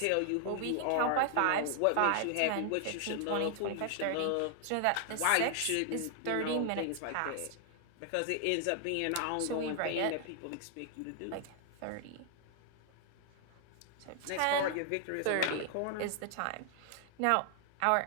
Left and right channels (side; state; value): both; different; correlation 0.00